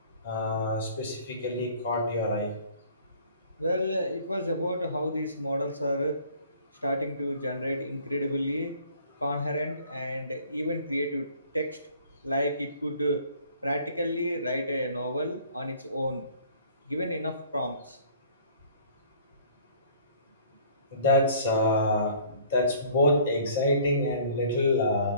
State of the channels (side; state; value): both; inverted; correlation -0.54